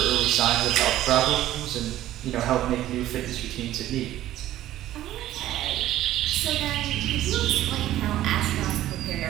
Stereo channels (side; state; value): left; quieter; 13.8 dB